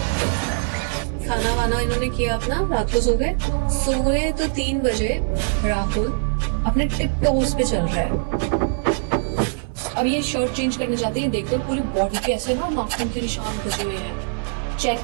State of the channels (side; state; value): left; silent; 59 dB below the other